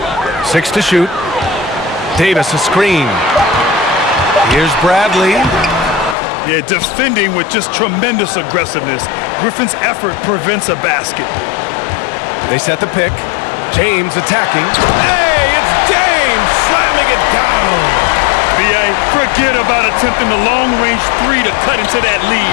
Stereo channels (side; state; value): right; drops out; at 6.2 s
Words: Six to shoot. Davis a screen. Here's Bradley. Yeah, defending with just tremendous aggressiveness. Griffin's effort prevents a basket. They set the pick. James attacking. Hey, it's James slamming it down. B.A., forget about attempting the long-range 3 to cut into that